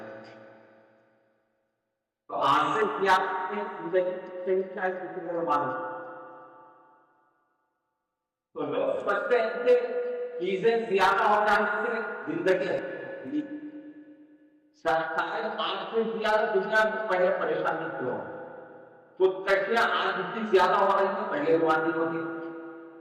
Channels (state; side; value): identical; both; correlation 1.00